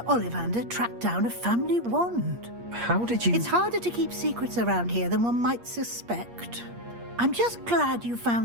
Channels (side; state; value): left; late; 8.5 ms